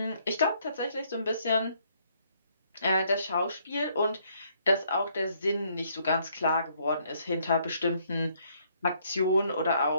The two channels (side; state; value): both; inverted; correlation -0.68